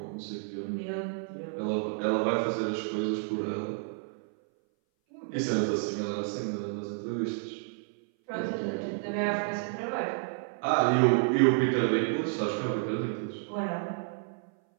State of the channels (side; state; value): left; silent; 57 dB below the other